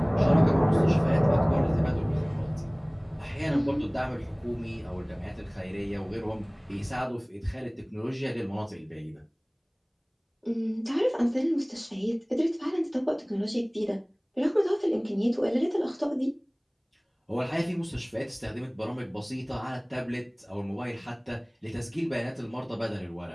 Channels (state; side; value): identical; both; correlation 1.00